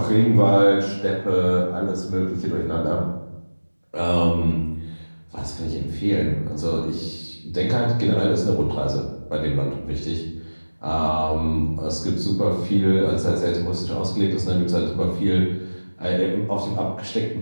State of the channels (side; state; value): both; inverted; correlation -1.00